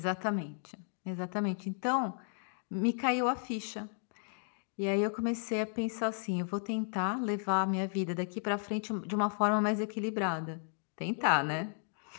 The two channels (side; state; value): right; silent; 55 dB below the other